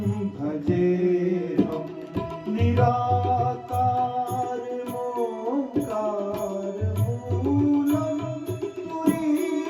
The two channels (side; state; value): both; identical; correlation 1.00